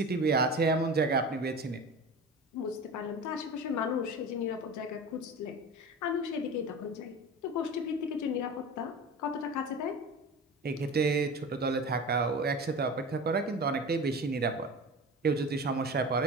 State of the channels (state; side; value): normal; both; correlation 0.32